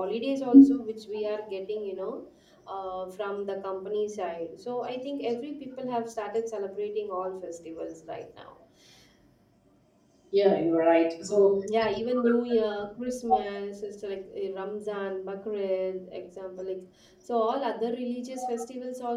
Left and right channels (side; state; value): both; identical; correlation 1.00